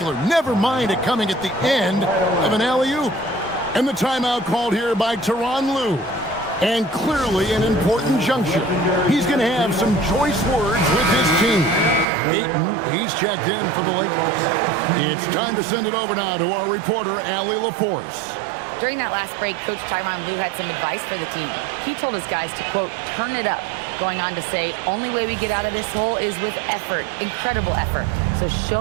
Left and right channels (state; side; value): drops out; left; at 12.1 s